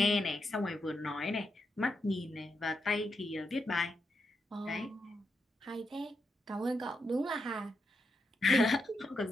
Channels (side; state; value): both; normal; correlation 0.83